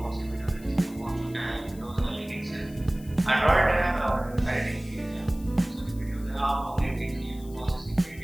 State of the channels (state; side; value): noise; left; hiss, 22 dB below the sound